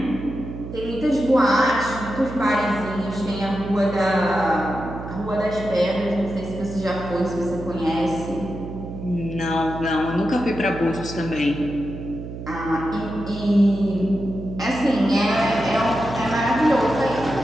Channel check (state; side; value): noise; right; hum, 10 dB below the sound